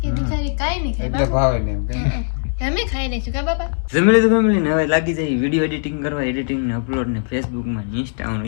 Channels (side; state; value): right; silent; digital silence